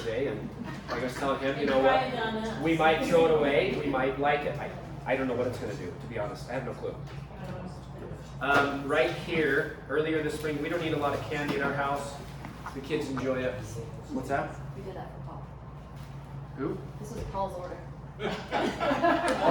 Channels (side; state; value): both; identical; correlation 1.00